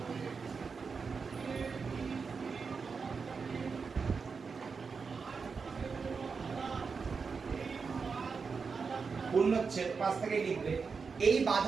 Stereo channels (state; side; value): quieter; left; 5.2 dB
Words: পূর্ণচ্ছেদ 5 থেকে লিখবে। এই